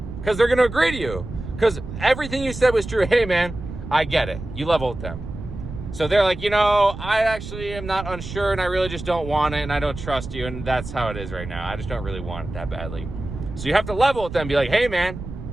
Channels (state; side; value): noise; right; rumble, 10 dB below the sound